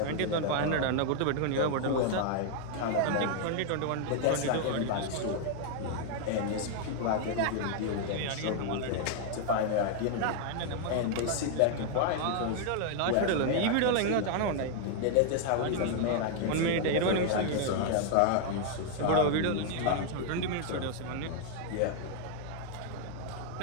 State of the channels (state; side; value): different; both; correlation 0.00